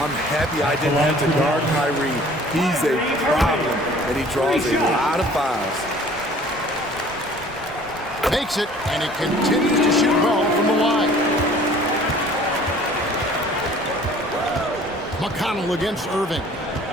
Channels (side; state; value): both; normal; correlation 0.51